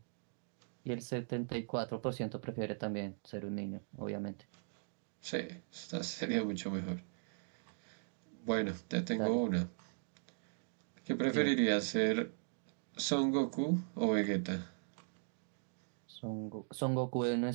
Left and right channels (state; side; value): silent; left; digital silence